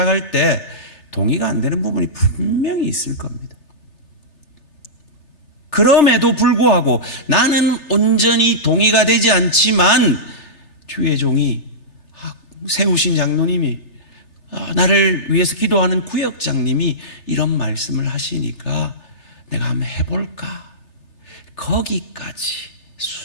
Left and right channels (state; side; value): late; right; 3.4 ms